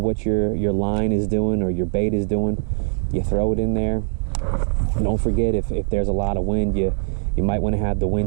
what your line is doing or your bait is doing. You throw it in there. Don't forget, if there's a lot of wind, you might want to have the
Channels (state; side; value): silent; left; 60 dB below the other